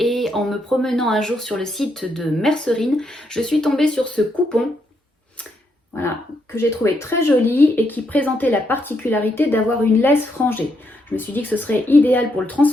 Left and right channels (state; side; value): normal; both; correlation 0.78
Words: en me promenant un jour sur le site de Mercerine, je suis tombée sur ce coupon. Voilà, que j'ai trouvé très joli et qui présentait la particularité d'avoir une laisse frangée. Je me suis dit que ce serait idéal pour le